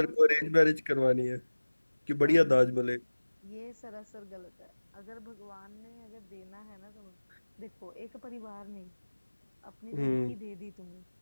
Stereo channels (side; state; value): both; inverted; correlation -1.00